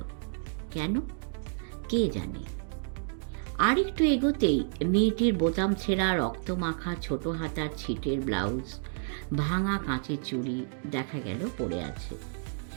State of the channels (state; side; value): silent; left; digital silence